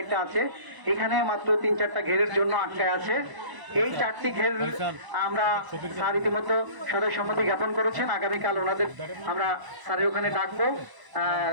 আছে এখানে মাত্র 3-4টা ঘেরের জন্য আটকায় আছে। এই 4টি ঘের আমরা স্যার ইতিমধ্যে সদয় সম্মতি জ্ঞাপন করেছেন। আগামীকাল ওনাদের আমরা স্যারের ওখানে ডাকবো,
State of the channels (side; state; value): left; late; 1.0 ms